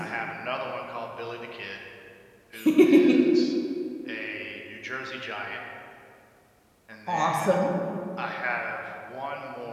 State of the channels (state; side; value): identical; both; correlation 1.00